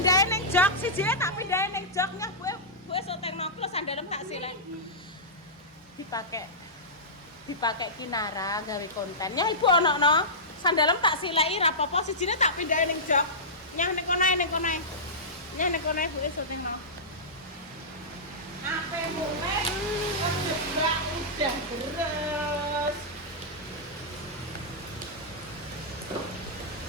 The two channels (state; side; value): normal; both; correlation -0.15